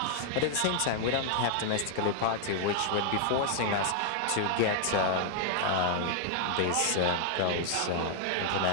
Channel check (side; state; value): both; different; correlation 0.00